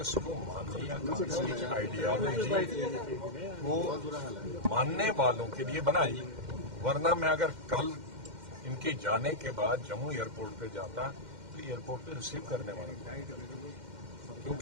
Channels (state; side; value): late; left; 2.1 ms